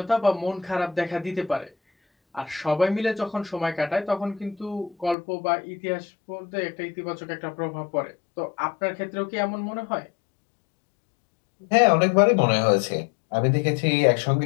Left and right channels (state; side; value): drops out; right; at 5.2 s